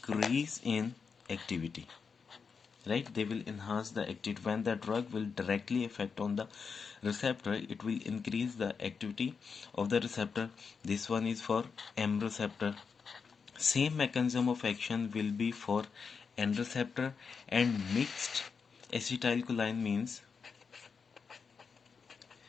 in activity, right? They will enhance the activity. When the drug will directly affect on the receptor, it will increase the activity of the receptor. This one is for M receptor. Same mechanism of action will be for N receptor. And mixed acetylcholine means,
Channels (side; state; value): right; quieter; 5.6 dB